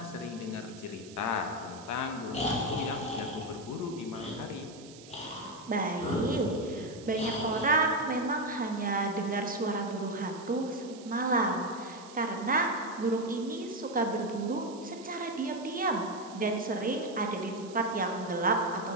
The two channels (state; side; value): noise; right; hiss, 19 dB below the sound